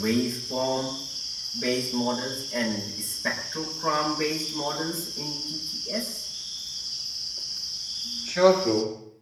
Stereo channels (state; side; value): identical; both; correlation 1.00